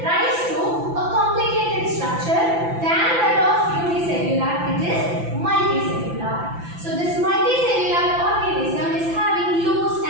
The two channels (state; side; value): late; left; 5.9 ms